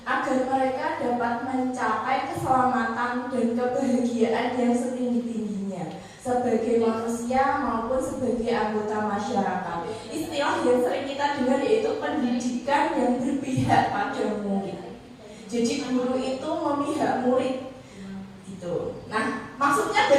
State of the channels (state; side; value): identical; both; correlation 1.00